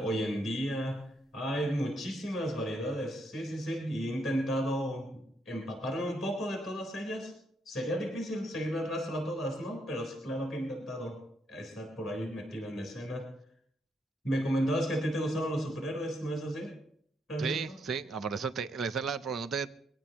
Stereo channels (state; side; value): normal; both; correlation 0.76